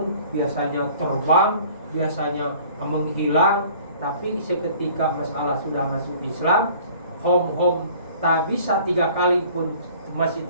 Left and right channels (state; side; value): inverted; both; correlation -0.51